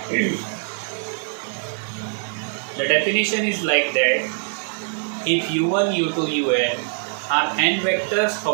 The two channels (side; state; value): left; silent; 57 dB below the other